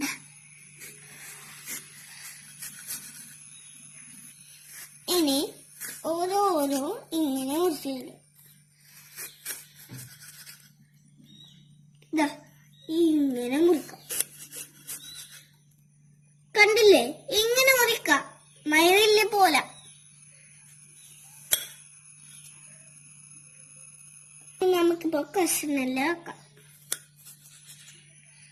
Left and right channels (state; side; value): identical; both; correlation 1.00